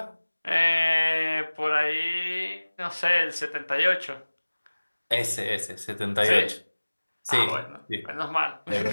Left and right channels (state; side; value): inverted; both; correlation -1.00